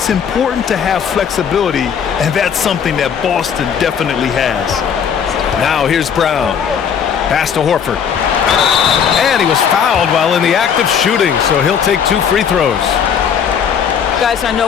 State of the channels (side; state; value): right; quieter; 7.5 dB